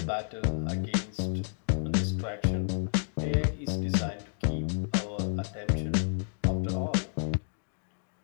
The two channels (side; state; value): right; silent; digital silence